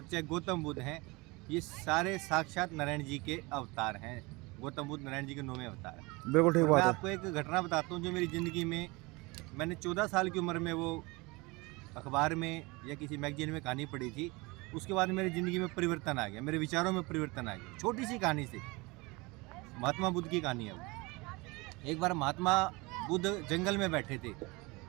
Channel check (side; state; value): left; quieter; 24.9 dB